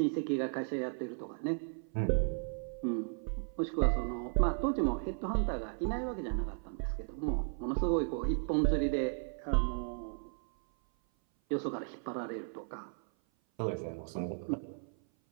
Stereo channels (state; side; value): silent; left; 54 dB below the other